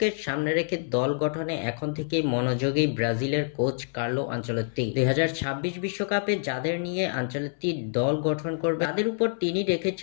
সামনে রেখে দল গঠনে এখন থেকেই মনোযোগী ব্রাজিলের কোচ কার্লো আনচেলত্তি। 2026 বিশ্বকাপে যাদের নিয়ে আনচেলত্তি দল গঠন করবে তাদের উপর তিনি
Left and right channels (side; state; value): right; silent; 60 dB below the other